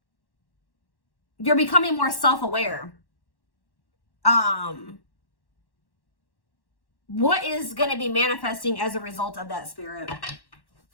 becoming more self-aware. What is going to be manifesting as a result of that, Spirit?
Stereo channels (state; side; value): late; right; 1.1 ms